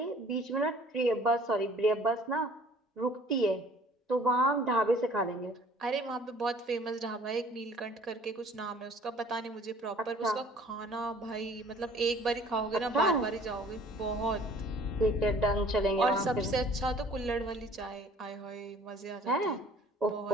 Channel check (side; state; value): both; normal; correlation 0.53